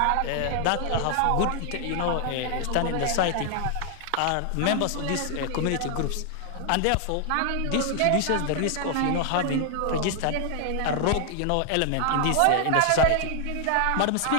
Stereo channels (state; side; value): different; both; correlation 0.00